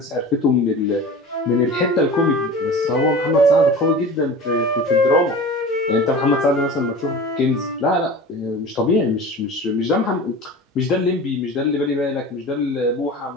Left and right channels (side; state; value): both; normal; correlation 0.36